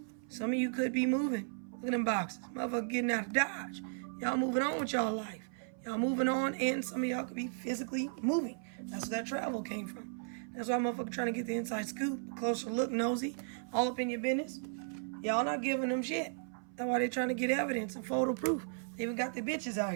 Some of you could be moving. Look at them boxes. Motherfucker getting out of Dodge. Y'all moving on with y'all life. Y'all moving on, and some of y'all could be physically moving. That's where that travel came from. That's why motherfucker trying to get the inside scoop, closer look, nosy, all up in your business. Y'all not giving them shit. That's why they trying to get evidence and photo proof. They even got the bitches out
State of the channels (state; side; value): silent; left; 54 dB below the other